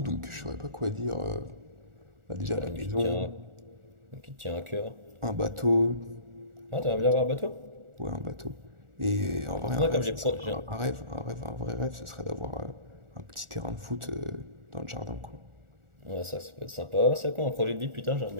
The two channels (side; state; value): left; late; 1.4 ms